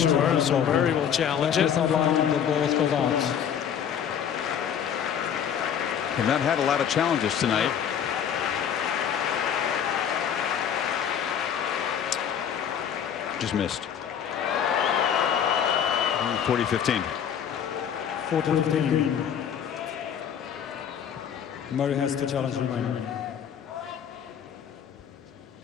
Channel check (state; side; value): quieter; right; 8.5 dB